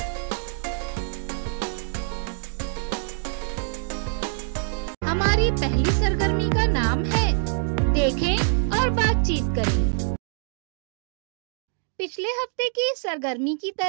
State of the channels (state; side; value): silent; left; 61 dB below the other